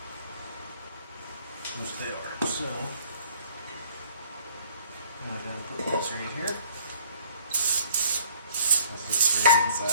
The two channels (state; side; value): inverted; both; correlation -0.57